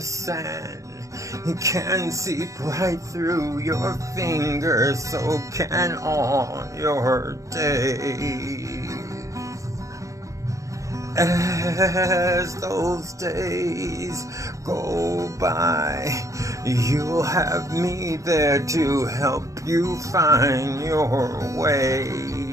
It can seep right through your fingers, so can all your days. As those days go by, you'll have me there to help you find your way.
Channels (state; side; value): late; left; 0.15 ms